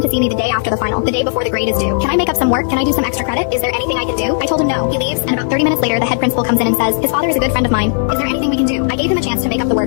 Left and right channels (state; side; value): silent; right; digital silence